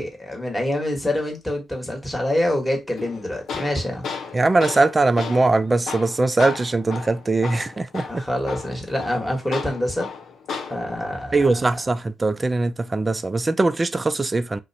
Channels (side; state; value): both; normal; correlation 0.93